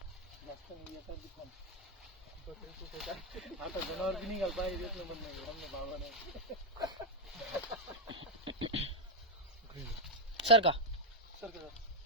आता जनावर बी निघाल पाहिजे देत नाही म्हणणं भावा नाही सर का सर का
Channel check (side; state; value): both; normal; correlation 0.01